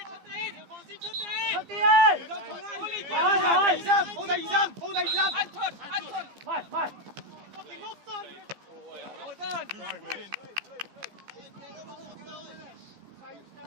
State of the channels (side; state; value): left; late; 15 ms